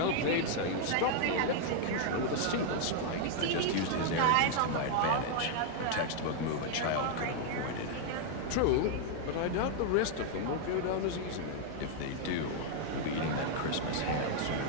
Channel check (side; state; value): both; different; correlation 0.00